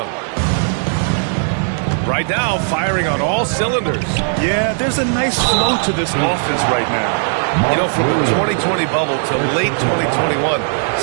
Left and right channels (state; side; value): silent; left; digital silence